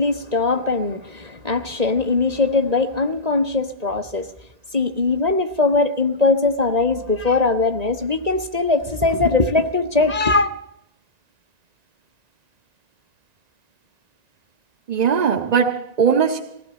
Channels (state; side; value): late; left; 1.9 ms